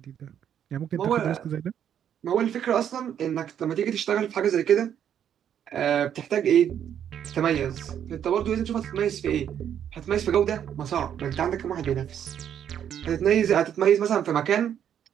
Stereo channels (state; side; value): quieter; left; 9.4 dB